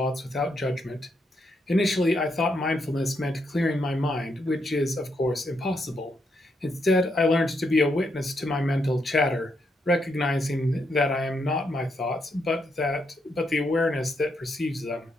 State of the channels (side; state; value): both; normal; correlation 0.79